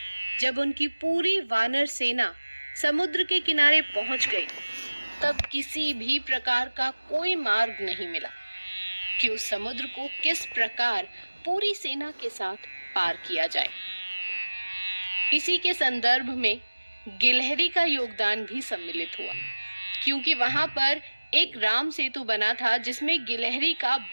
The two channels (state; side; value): inverted; both; correlation -1.00